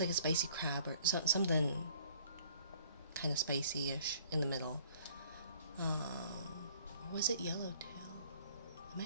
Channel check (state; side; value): inverted; both; correlation -0.57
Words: spicy crab or something kind of spicy-ish in the middle. Or was it yellowtail? It